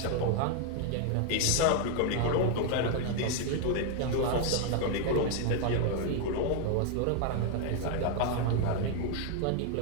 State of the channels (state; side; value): different; both; correlation 0.00